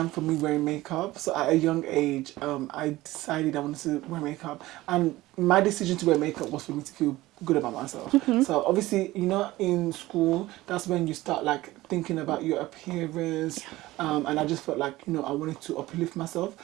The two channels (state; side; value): quieter; left; 17.8 dB